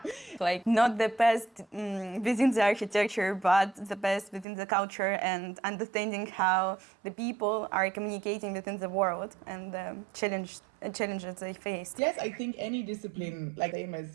Like not the best within the architecture, but the best within the culture, and understanding how the people are communicating within the world and the challenges they face. Yes, I think any discipline, like same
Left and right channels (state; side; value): drops out; left; at 4.5 s